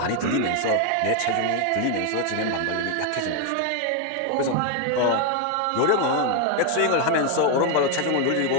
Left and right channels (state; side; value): different; both; correlation 0.01